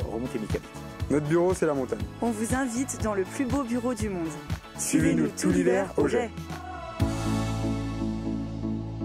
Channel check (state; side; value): identical; both; correlation 1.00